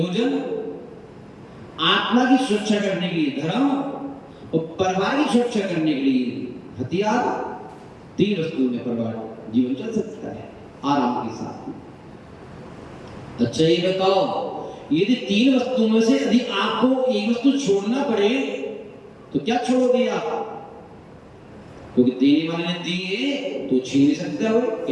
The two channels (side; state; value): both; identical; correlation 1.00